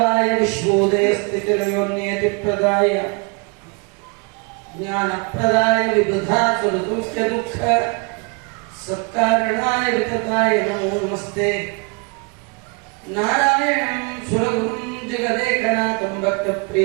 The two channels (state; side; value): quieter; left; 32.7 dB